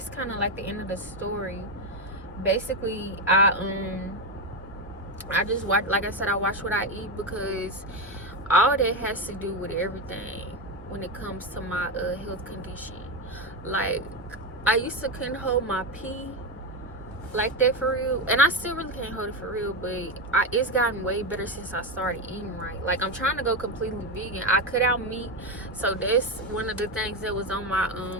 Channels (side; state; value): both; normal; correlation 0.11